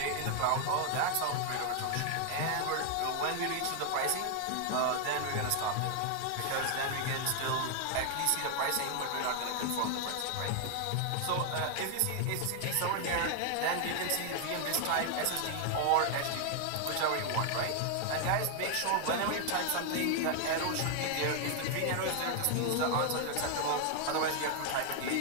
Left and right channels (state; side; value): different; both; correlation 0.00